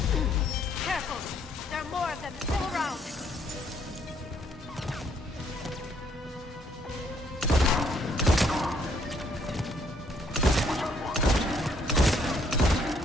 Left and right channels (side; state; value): both; normal; correlation 0.67